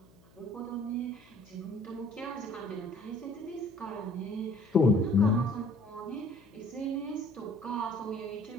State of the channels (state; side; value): noise; left; hum, 27 dB below the sound